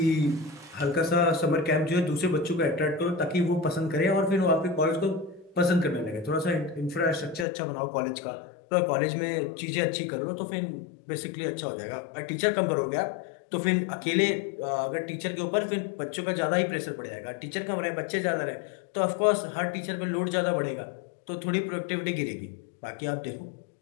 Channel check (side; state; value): right; drops out; at 7.5 s